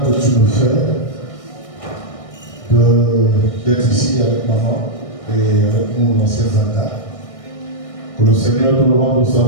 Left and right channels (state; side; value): late; right; 1.6 ms